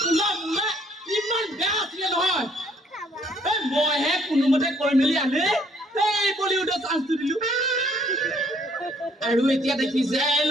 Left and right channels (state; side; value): normal; both; correlation 0.64